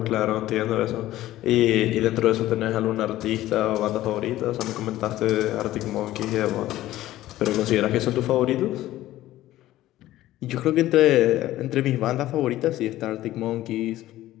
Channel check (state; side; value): quieter; right; 15.0 dB